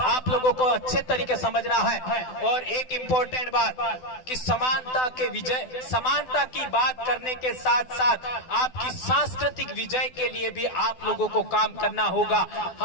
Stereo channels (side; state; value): right; late; 12 ms